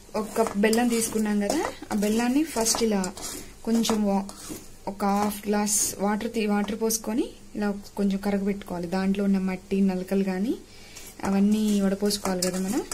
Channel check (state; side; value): identical; both; correlation 1.00